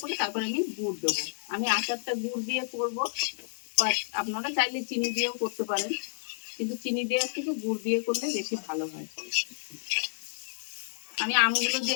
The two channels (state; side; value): silent; right; 58 dB below the other